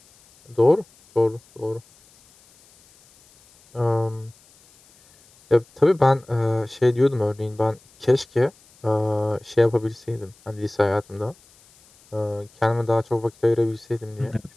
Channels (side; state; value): left; noise; hiss, 29 dB below the sound